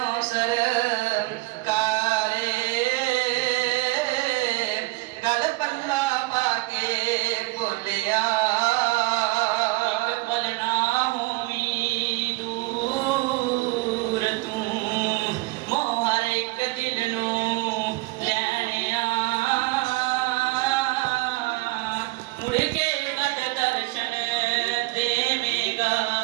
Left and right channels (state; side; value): quieter; left; 22.4 dB